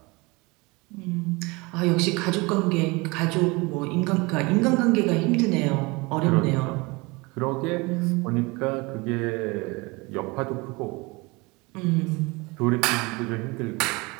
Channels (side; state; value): left; quieter; 25.4 dB